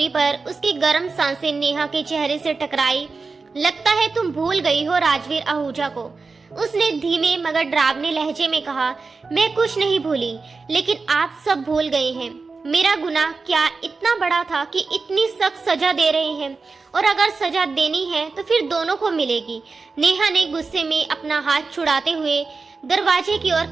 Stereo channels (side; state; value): left; quieter; 4.3 dB